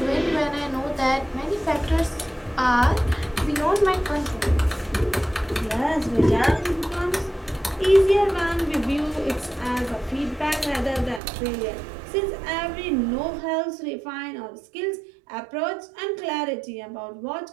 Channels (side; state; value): left; drops out; at 11.2 s